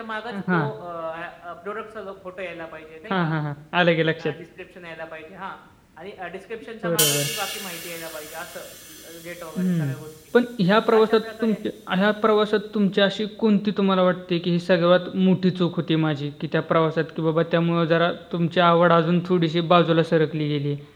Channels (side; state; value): both; identical; correlation 1.00